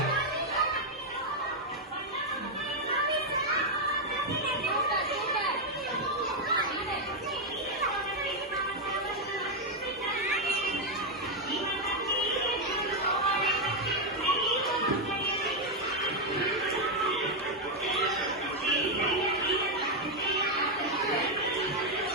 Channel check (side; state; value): both; normal; correlation 0.02